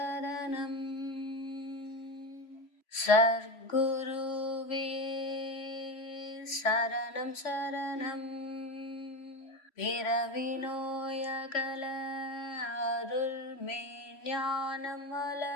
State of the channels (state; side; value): late; right; 3.1 ms